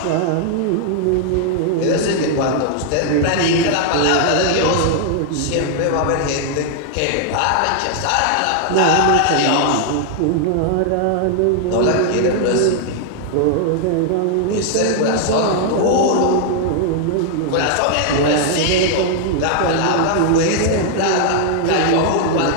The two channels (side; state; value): both; different; correlation 0.00